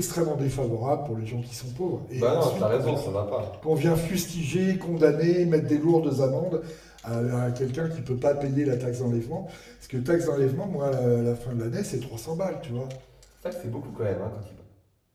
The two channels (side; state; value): both; identical; correlation 1.00